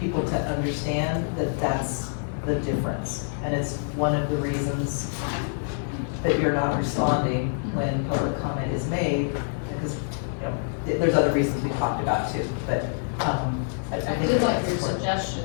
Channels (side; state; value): right; silent; 60 dB below the other